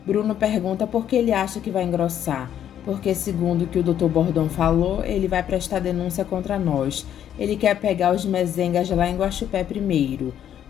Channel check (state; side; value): quieter; right; 10.1 dB